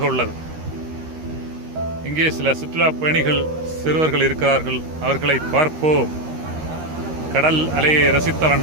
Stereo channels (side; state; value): left; late; 13 ms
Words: உள்ளது. இங்கே சில சுற்றுலா பயணிகள் சிறுவர்கள் இருக்கிறார்கள். அவர்களை பார்ப்போம். கடல் அலையை ரசித்த